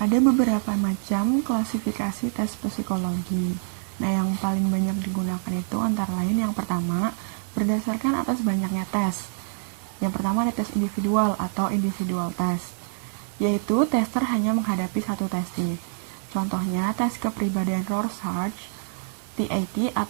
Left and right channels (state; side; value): silent; left; digital silence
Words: beberapa macam klasifikasi tes psikologi. Nah, yang paling banyak digunakan itu antara lain yang pertama, berdasarkan atas banyaknya tes. Yang pertama ada tes individual atau individual test, yaitu tester hanya menghadapi satu testif. Contohnya tes kepribadian Rorschach, TAT